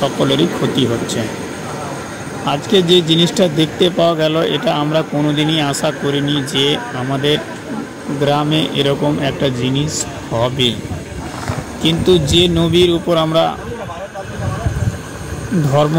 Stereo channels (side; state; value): both; identical; correlation 1.00